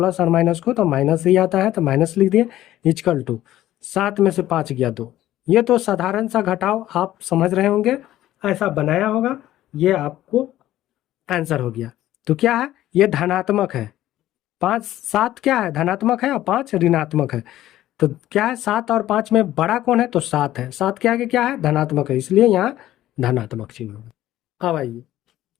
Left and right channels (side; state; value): right; quieter; 13.9 dB